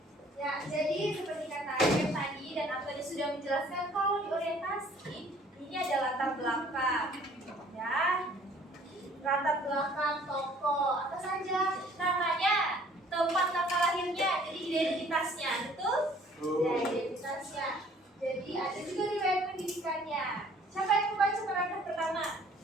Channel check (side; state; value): both; normal; correlation 0.56